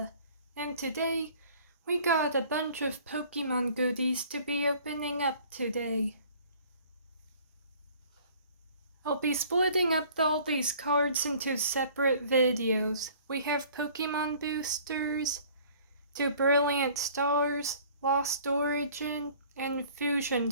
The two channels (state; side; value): inverted; both; correlation -0.52